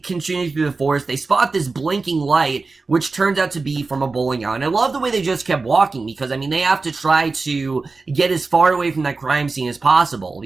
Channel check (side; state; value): left; quieter; 3.9 dB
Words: through the forest. They spot this blinking light, which turns out to be from a bowling alley. And I love the way they just kept walking, because I mean, they have to try to get as far away from that crime scene as possible,